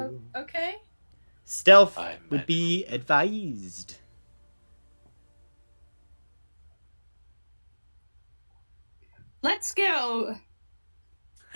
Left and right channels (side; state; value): both; inverted; correlation -1.00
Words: Okay. Stealth I would be advised." Let's go.